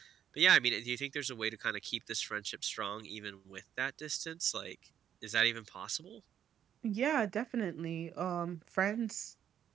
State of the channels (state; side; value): quieter; left; 9.5 dB